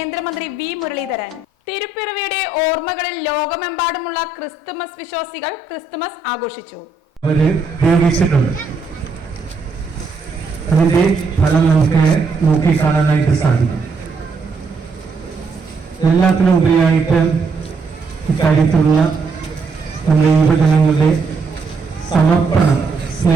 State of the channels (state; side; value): quieter; left; 3.8 dB